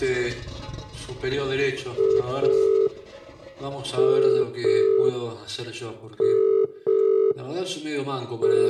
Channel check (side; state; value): both; identical; correlation 1.00